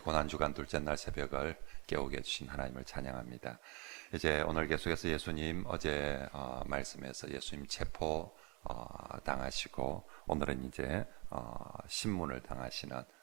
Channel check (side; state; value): left; quieter; 29.9 dB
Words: 둘째 날 새벽을 깨우게 해주신 하나님을 찬양합니다. 이제 오늘 계속해서 예수님 어제 말씀에서 예수님 체포 당하시고 오늘은 이제 신문을 당하시는